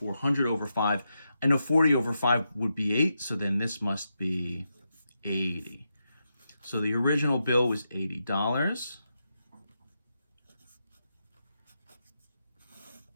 over 5. I know 40 over 5 would be 8, so then this must be 80. So the original bill was $80.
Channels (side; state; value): both; inverted; correlation -0.86